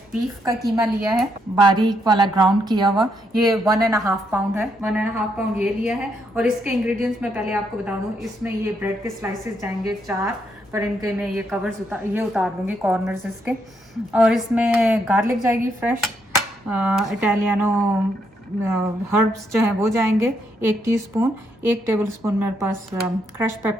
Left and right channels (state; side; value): normal; both; correlation 0.76